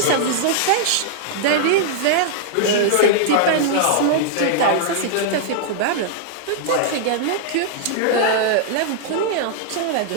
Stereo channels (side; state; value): both; different; correlation -0.01